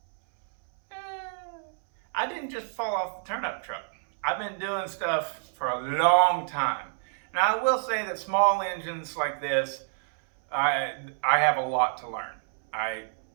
I didn't just fall off the turnip truck. I've been doing stuff for a long time. Now, I will say that small engines like this, I have a lot to learn.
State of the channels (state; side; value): silent; left; 59 dB below the other